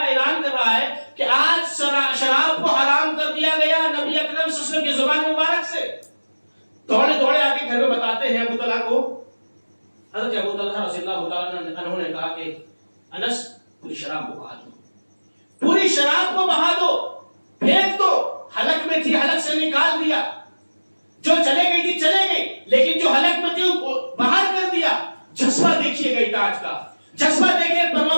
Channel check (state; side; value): inverted; both; correlation -1.00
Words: اعلان کر رہا ہے کہ آج شراب کو حرام کر دیا گیا نبی اکرم صلی اللہ علیہ وسلم کی زبان مبارک سے۔ دوڑے آ کے گھر میں بتاتے ہیں ابو طلحہ کو۔ حضرت ابو طلحہ رضی اللہ تعالیٰ عنہ نے کہا کہ انس پوری شراب کو بہا دو، پوری شراب کو بہا دو، پھینک دو، حلق میں تھی حلق سے نکال دیا، جو چلے گئی تھی چلے گئی، لیکن جو حلق میں تھی باہر کر دیا۔ جذبہ دیکھیے گئی تاج کا، جذبہ دیکھیے